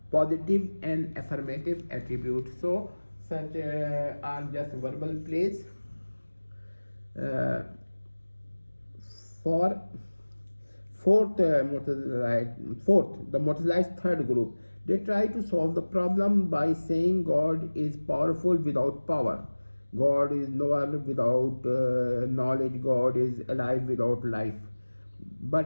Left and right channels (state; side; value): inverted; both; correlation -1.00